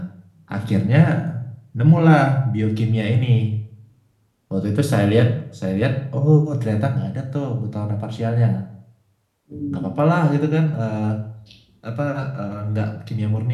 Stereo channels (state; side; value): identical; both; correlation 1.00